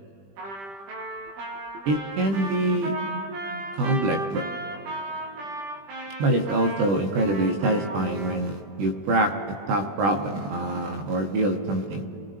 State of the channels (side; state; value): left; late; 20 ms